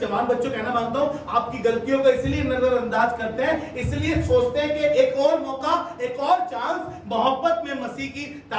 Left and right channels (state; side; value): identical; both; correlation 1.00